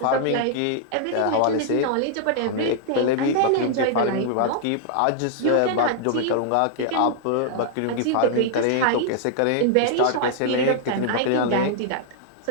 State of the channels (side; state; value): both; different; correlation -0.01